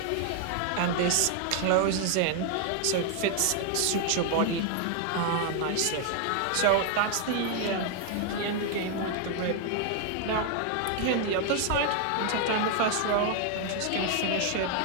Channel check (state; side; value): different; both; correlation 0.00